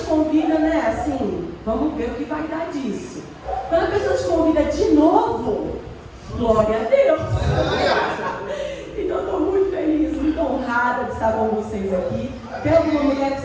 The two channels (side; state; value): both; identical; correlation 1.00